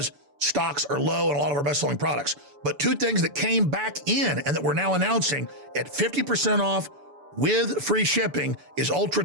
stocks are low in a lot of our best-selling products. But 2 things that came back in and that we're now announcing at 50% off with free shipping is Ultra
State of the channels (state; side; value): late; left; 6.9 ms